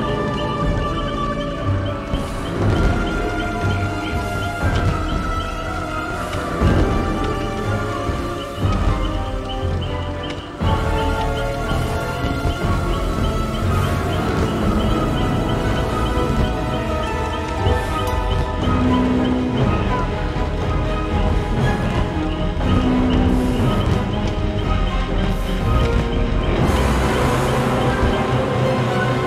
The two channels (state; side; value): identical; both; correlation 1.00